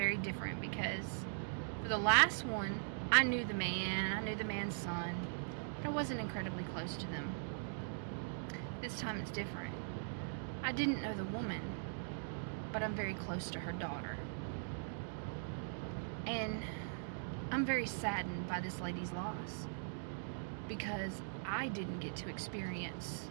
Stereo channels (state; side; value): silent; left; digital silence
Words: different because for the last one, I knew the man's son, but I wasn't incredibly close to them. This time it's different. I didn't know the woman, but I'm very close to her daughter. And I'm very saddened by this lady's loss because I didn't get to experience